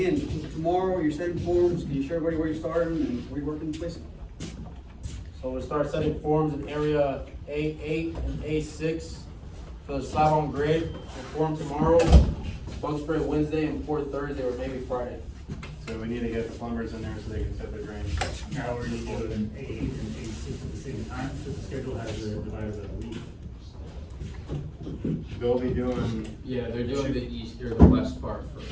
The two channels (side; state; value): both; identical; correlation 1.00